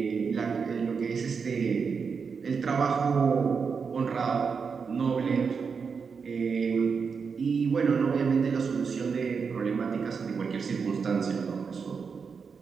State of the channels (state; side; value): quieter; left; 5.7 dB